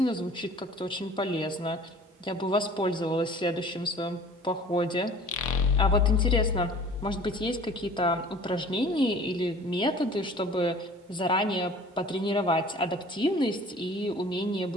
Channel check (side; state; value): both; normal; correlation 0.47